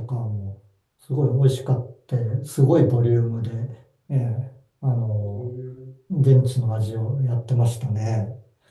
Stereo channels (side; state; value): both; identical; correlation 1.00